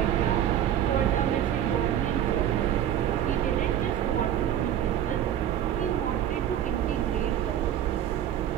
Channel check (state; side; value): quieter; left; 10.7 dB